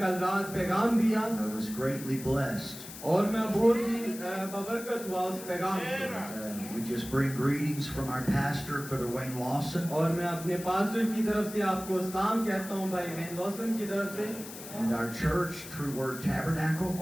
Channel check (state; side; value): noise; left; hiss, 13 dB below the sound